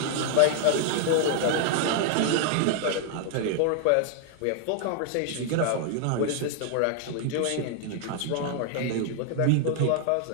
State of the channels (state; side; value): different; both; correlation 0.00